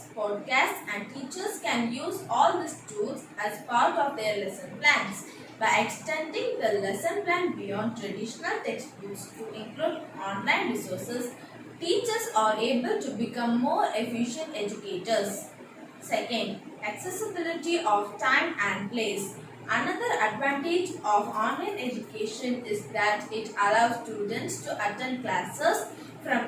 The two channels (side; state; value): both; identical; correlation 1.00